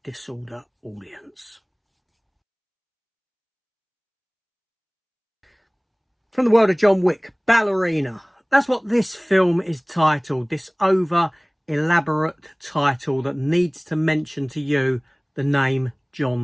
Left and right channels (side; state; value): both; identical; correlation 1.00